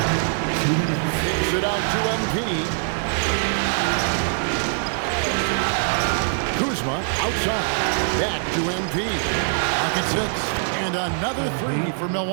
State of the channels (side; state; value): left; silent; digital silence